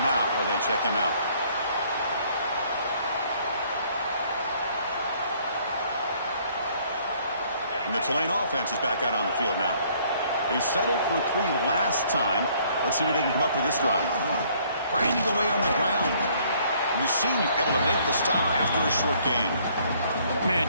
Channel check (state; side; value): inverted; both; correlation -0.62